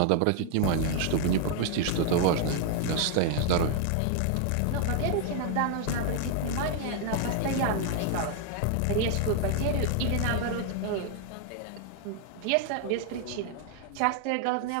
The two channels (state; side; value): different; both; correlation 0.00